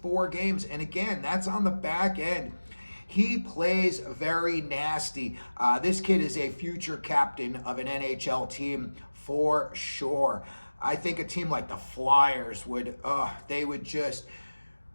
games. And again, that's on the back end. He plays very nasty. This kid is a future captain of an NHL team for sure. I think a team like the Flyers would,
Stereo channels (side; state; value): both; inverted; correlation -1.00